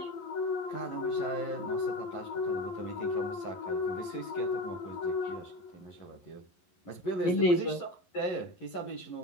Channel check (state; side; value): late; right; 11 ms